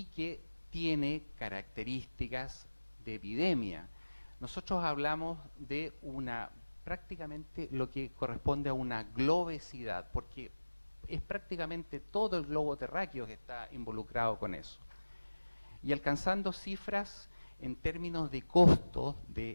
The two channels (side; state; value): both; inverted; correlation -1.00